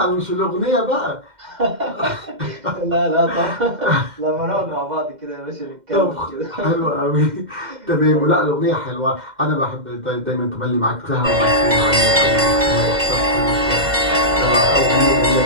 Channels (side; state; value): left; late; 2.1 ms